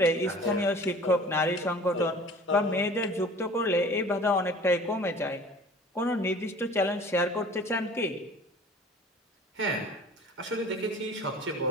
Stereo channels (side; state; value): both; normal; correlation 0.45